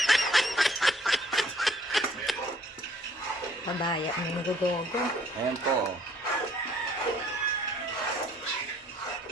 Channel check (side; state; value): both; normal; correlation 0.60